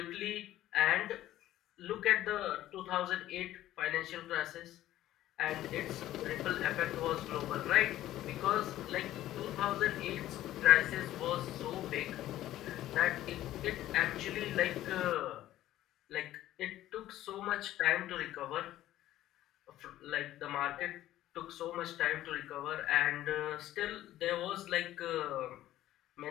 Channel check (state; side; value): quieter; right; 14.0 dB